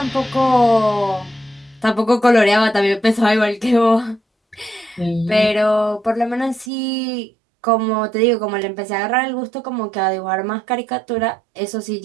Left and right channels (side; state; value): left; drops out; at 6.7 s